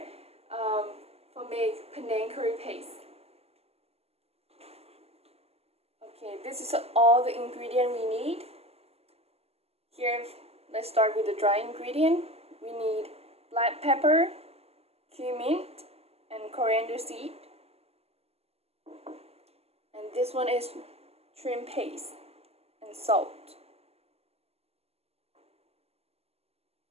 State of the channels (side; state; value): left; late; 0.29 ms